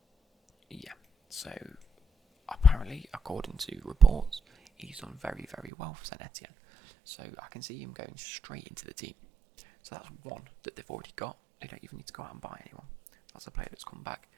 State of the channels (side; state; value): left; drops out; at 5.7 s